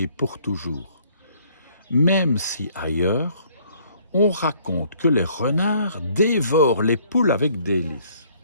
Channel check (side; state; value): both; inverted; correlation -0.61